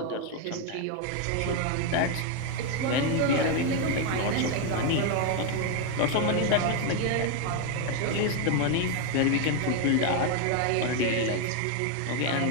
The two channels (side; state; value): both; different; correlation 0.01